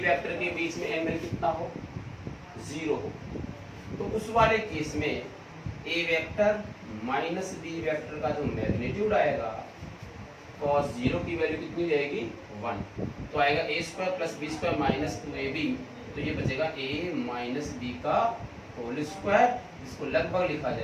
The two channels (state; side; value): identical; both; correlation 1.00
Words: वेक्टर के बीच में एंगल कितना हो 0 हो, तो उस वाले केस में ए वेक्टर माइनस बी वेक्टर का जो मैग्नीट्यूड आएगा cos 0 की वैल्यू कितनी रहेगी 1, तो आएगा a square plus b square minus 2ab, तो ये बचेगा a माइनस बी का होल स्क्वायर, जिसको लगभग लिखा